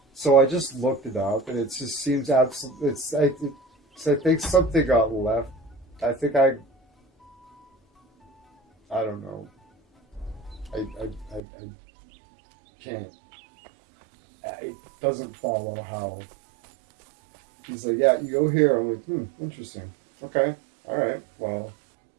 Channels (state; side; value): drops out; left; at 11.4 s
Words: So I just looked it up, and it just seems absolutely. I think something got left. I think I don't know. I can't. It doesn't follow how. He's like, yeah, you go here. I'm like, interesting. Okay, all right. Well,